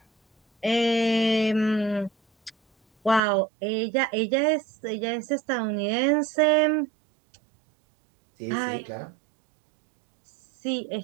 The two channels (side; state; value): left; drops out; at 3.2 s